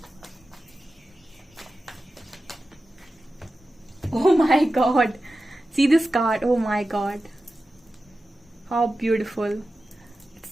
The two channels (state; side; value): normal; both; correlation 0.93